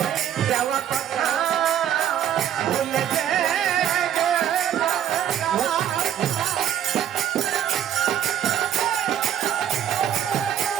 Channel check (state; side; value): quieter; left; 10.3 dB